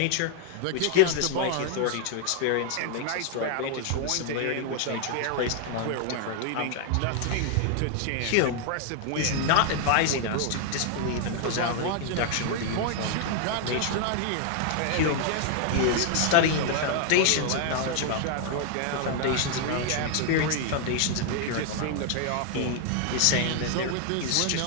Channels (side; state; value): both; different; correlation 0.00